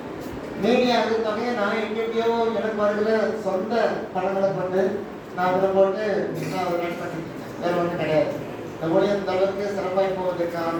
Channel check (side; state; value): both; identical; correlation 1.00